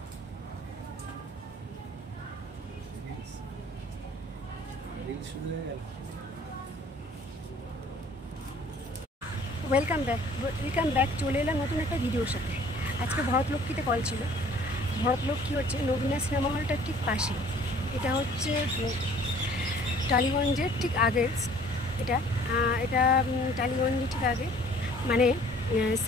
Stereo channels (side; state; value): both; normal; correlation 0.54